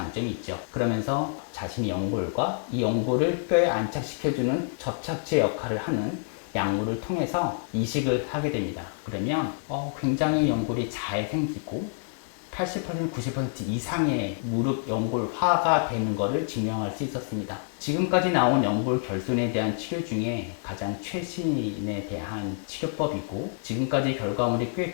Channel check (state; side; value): silent; right; 60 dB below the other